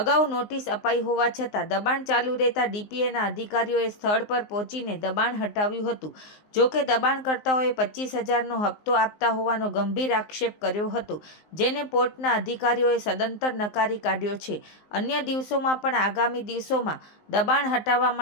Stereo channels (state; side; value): late; right; 19 ms